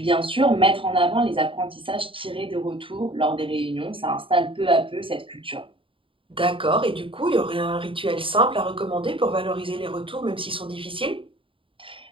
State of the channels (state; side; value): late; left; 0.25 ms